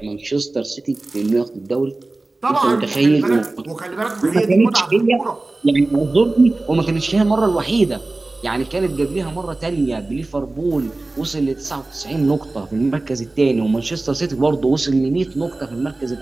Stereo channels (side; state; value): left; quieter; 3.1 dB